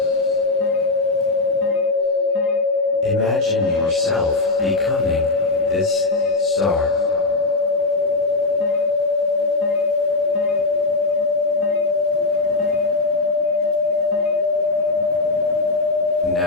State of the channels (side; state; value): right; quieter; 3.5 dB